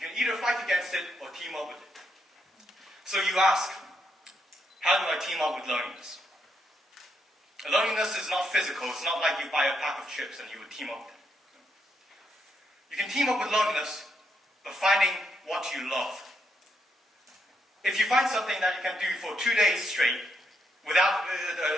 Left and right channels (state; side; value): normal; both; correlation 0.78